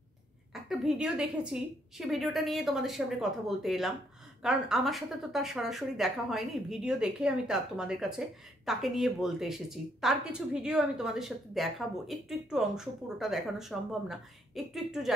একটা ভিডিও দেখেছি, সে ভিডিওটা নিয়ে তোমাদের সামনে কথা বলতে এলাম, কারণ আমার সাথে তো তার সরাসরি দেখা হয়নি। ভিডিও দেখে আমি তোমাদের কাছে তাকে নিয়ে বলতে এসেছি। তার কিছু ভিডিও আমি তোমাদের সাথে দেখাবো, একটু একটু অংশ, পুরোটা দেখানো সম্ভব না, একটু একটু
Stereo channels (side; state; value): both; normal; correlation 0.71